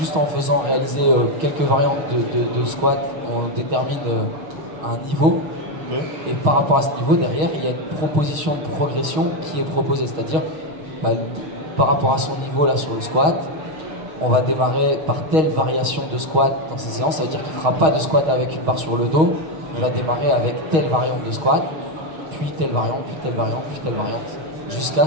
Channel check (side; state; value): left; late; 6.4 ms